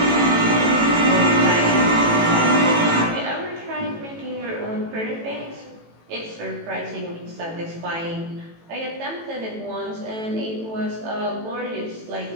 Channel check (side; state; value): left; late; 18 ms